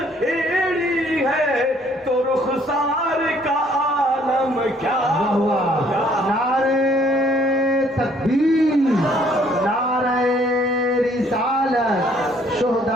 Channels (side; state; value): both; normal; correlation 0.62